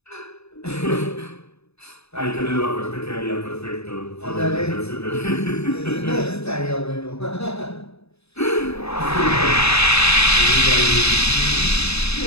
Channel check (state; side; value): late; right; 0.79 ms